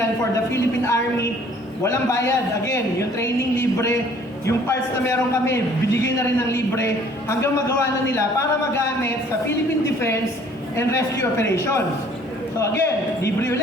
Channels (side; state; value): both; normal; correlation 0.56